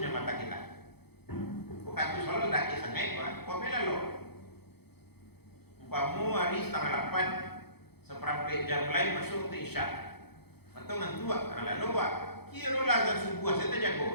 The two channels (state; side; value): late; right; 0.97 ms